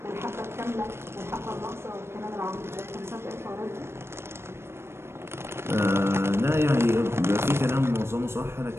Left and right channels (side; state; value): left; late; 0.12 ms